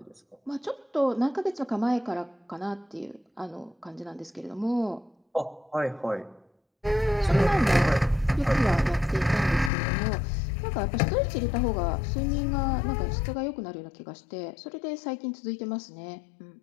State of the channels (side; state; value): right; drops out; at 9.7 s